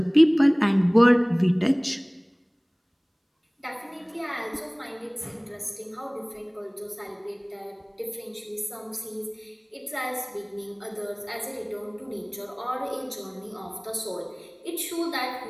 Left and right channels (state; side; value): identical; both; correlation 1.00